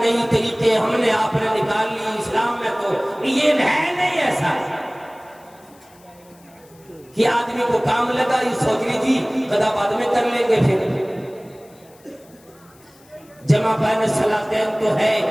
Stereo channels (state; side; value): noise; left; hiss, 29 dB below the sound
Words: طریقے ہم نے آپ نے نکال لی اسلام میں, تو یہ ہے نہیں ایسا کہ آدمی کو کام لگا یہ سوچ لیجیے قضا بعد میں کر لیں گے. پھر جمع بین الصلاتین تو ہے,